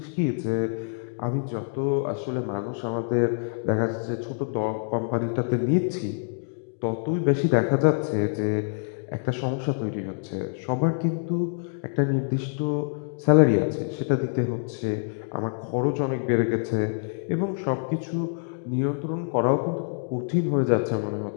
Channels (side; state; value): right; silent; digital silence